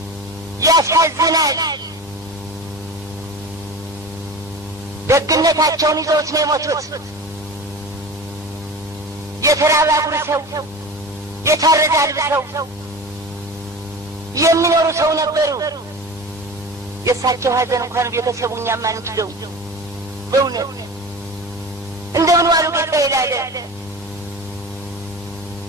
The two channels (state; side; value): normal; both; correlation 0.33